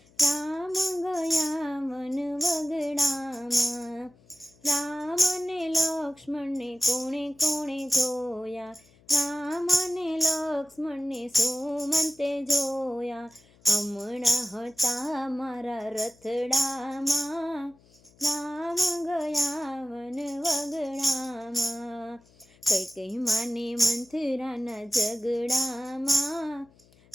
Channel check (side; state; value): left; noise; hum, 29 dB below the sound